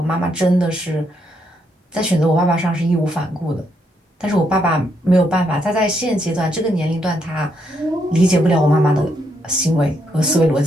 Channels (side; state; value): both; normal; correlation 0.76